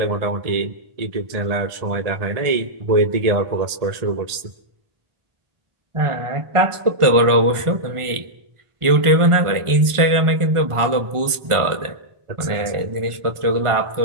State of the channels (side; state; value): left; late; 1.4 ms